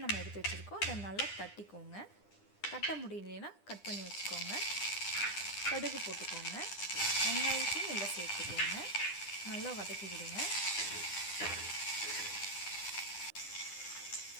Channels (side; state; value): right; late; 9.9 ms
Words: நம்ம எடுத்து வச்சுருக்கோம், அதை நல்லா தட்டிக்கோங்க. தட்ட முடியலைன்னா கட் பண்ணி வச்சுக்கோங்க. கடுகு போட்டுக்கோங்க. வெங்காயத்தையும் உள்ளே சேர்த்துக்கோங்க. நல்லா வதக்கி விடுங்க.